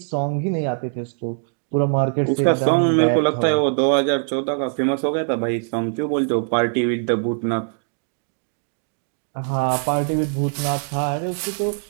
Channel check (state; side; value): silent; left; digital silence